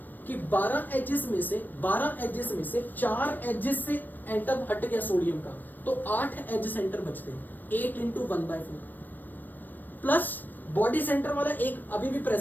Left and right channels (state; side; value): late; right; 0.090 ms